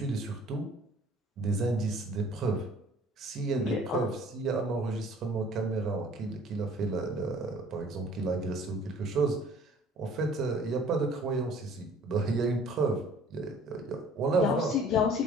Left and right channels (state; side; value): normal; both; correlation 0.52